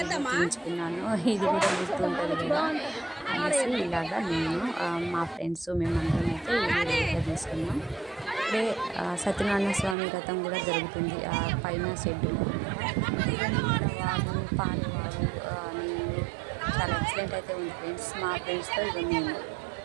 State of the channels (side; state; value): left; drops out; at 10.0 s